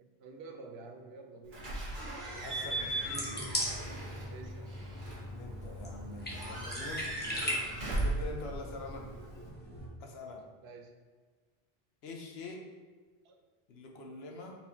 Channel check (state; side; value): normal; both; correlation 0.31